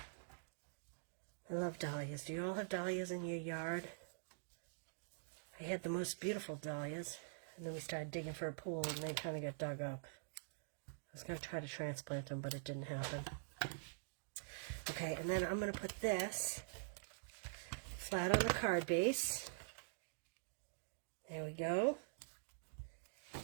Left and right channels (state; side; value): silent; left; digital silence